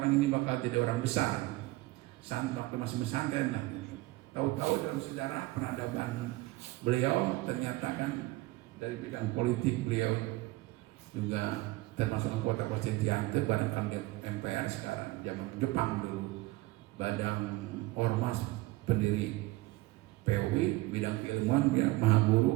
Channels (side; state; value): left; quieter; 20.0 dB